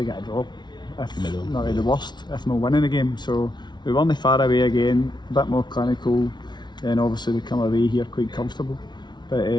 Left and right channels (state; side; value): late; right; 0.21 ms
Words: a draw, if not at the worst, if not winning a game. So we won the far away again, a bit more clinical, and obviously we come away here quite comfortable. But